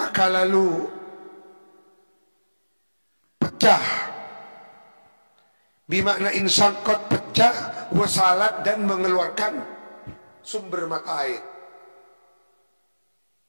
lalu pecah. Bimakna insangkot, pecah, wasalat, dan mengeluarkan sumber mata air.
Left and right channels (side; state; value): both; inverted; correlation -1.00